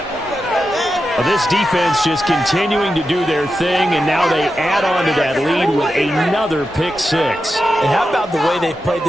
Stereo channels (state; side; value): normal; both; correlation 0.89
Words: Well, this defense just continuing to do their thing, and now they add on to that lead with another pick 6. And how about the way they've played